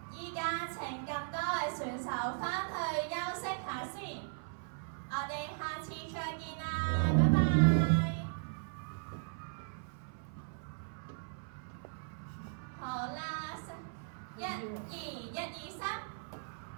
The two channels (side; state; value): left; silent; 53 dB below the other